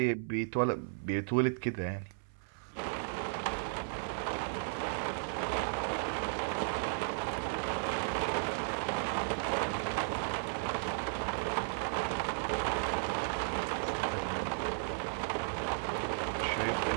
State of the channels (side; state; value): left; silent; 55 dB below the other